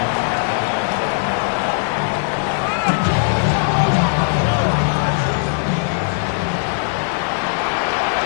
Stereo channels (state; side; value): silent; right; digital silence